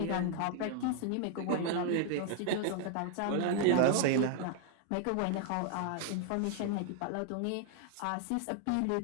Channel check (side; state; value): both; different; correlation 0.00